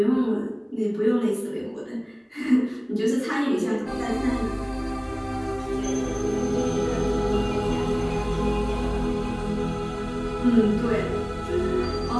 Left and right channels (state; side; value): identical; both; correlation 1.00